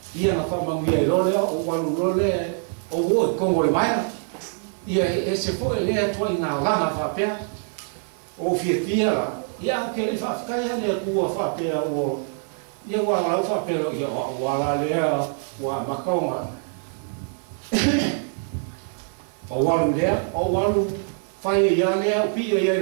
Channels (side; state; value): left; silent; 56 dB below the other